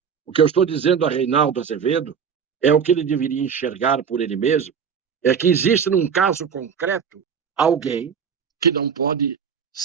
O que eu estou dizendo a Reinaldo Azevedo é o que ele deveria enxergar por ele mesmo, é que existe num caso concreto alguém que não pode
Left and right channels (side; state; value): left; quieter; 7.0 dB